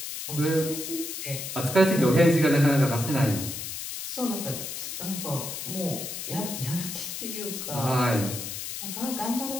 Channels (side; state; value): left; noise; hiss, 6 dB below the sound